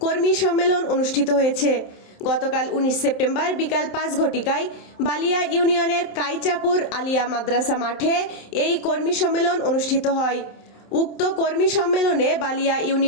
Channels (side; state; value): right; late; 27 ms